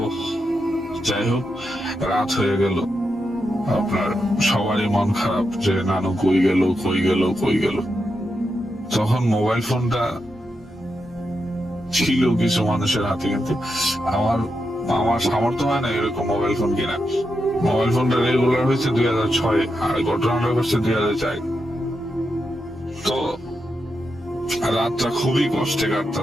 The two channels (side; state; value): both; normal; correlation 0.86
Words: যাই হোক, রাত হয়ে গেল, আপনার সবারই মন খারাপ যে নানু কই গেল কই গেল কই গেল। তখন মোবাইল ফোনটা ছিল কিছু মানুষের হাতে, কিন্তু আমার সামর্থ্য হয় না এরকম মোবাইল ফোন কিনা। মোবাইল ফোনটা রেগুলার হয়েছে 2006 আর ঘটনাটা হচ্ছে 2004। তো রাতটা খুবই কষ্টে